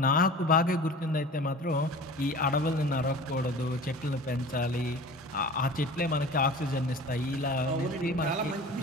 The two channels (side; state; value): both; normal; correlation 0.39